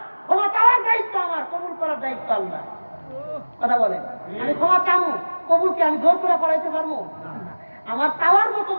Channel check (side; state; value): both; inverted; correlation -1.00